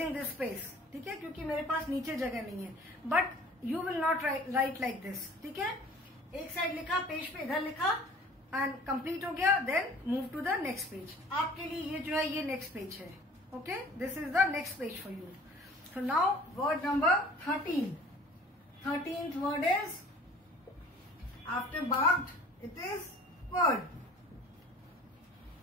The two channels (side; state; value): both; normal; correlation 0.48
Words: this space. ठीक है, क्योंकि मेरे पास नीचे जगह नहीं है. But you will not write like this. ठीक है, एक साइड लिखा, पेज पे इधर लिखा एंड कंप्लीट हो गया, then move to the next page. आपके लिए ये जो है ये नेक्स्ट पेज है. Okay, this is the next page for you. So now word number 13. 13th word is after barked, it is word.